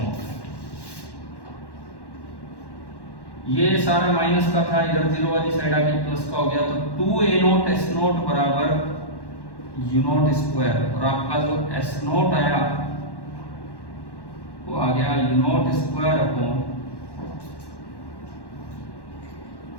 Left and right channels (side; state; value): right; late; 1.1 ms